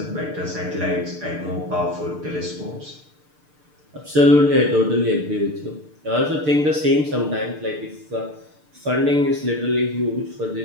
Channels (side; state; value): left; late; 6.7 ms